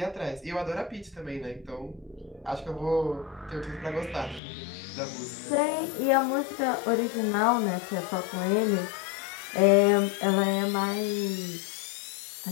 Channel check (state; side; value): drops out; right; at 4.4 s